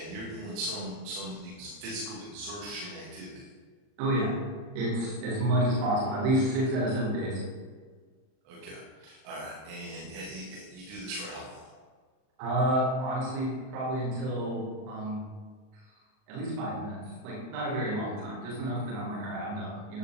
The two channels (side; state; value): left; late; 39 ms